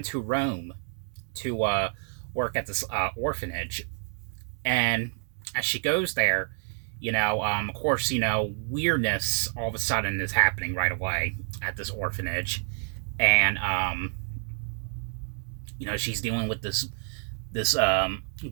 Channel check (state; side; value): silent; left; digital silence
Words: to Rome to work at this orphanage. And as she goes there, of course, weirdness all of a sudden is happening right away at this orphanage. And she's dealing with this